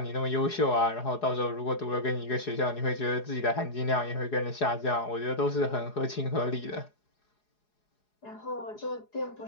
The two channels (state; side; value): late; right; 4.8 ms